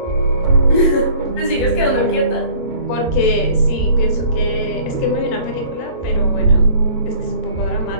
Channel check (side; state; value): right; late; 17 ms